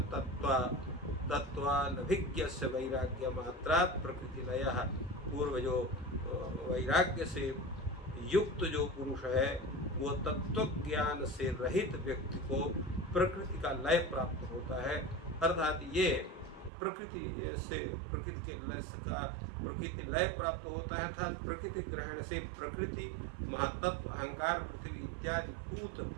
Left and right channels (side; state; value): left; drops out; at 16.7 s